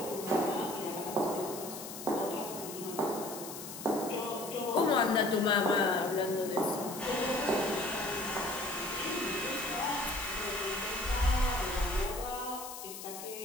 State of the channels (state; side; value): noise; left; hiss, 10 dB below the sound